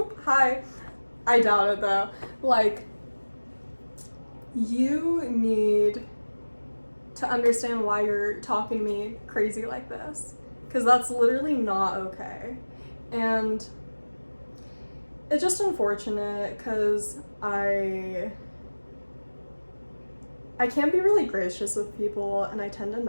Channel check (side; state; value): both; inverted; correlation -1.00